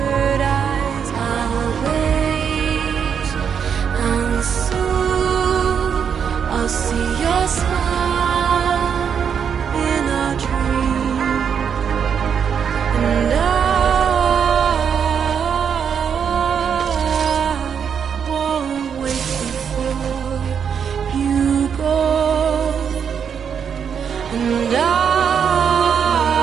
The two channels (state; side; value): quieter; left; 7.3 dB